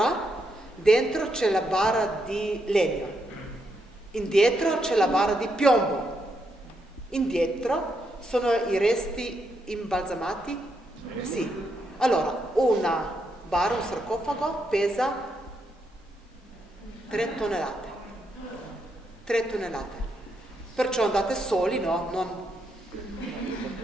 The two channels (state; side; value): normal; both; correlation 0.79